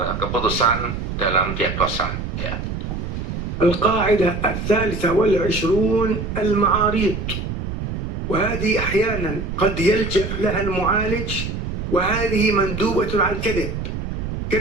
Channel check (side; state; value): right; noise; rumble, 5 dB below the sound